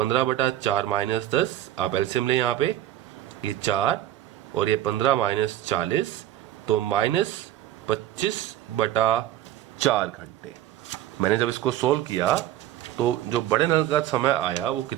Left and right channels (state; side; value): quieter; left; 12.8 dB